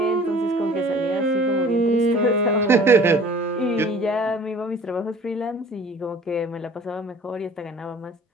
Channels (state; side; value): normal; both; correlation 0.49